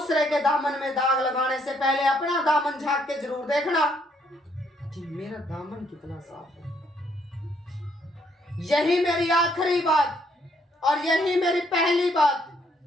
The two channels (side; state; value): both; normal; correlation 0.70